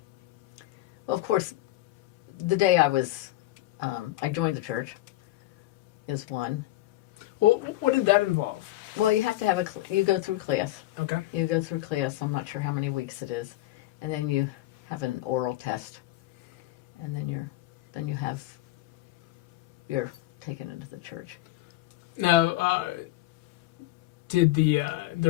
of course, the day I joined the church is one. Well, what did that involve? Well, you have to have you go through class. Okay. You go through class. I'm not sure how many weeks it is, and then you have an oral test, and then you're taken into the church. Now, did the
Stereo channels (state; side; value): quieter; right; 16.5 dB